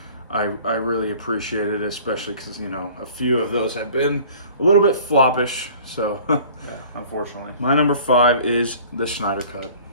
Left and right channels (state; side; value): inverted; both; correlation -0.48